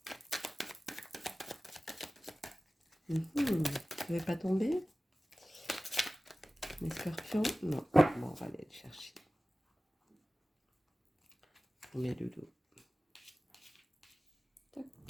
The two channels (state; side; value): normal; both; correlation 0.96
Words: Ça ne va pas tomber? Les scorpions? Non. Bon, on va aller le chercher. On met le dos. Tac.